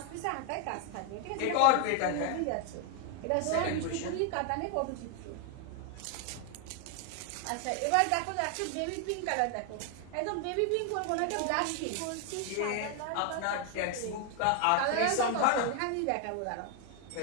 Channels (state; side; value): different; both; correlation 0.01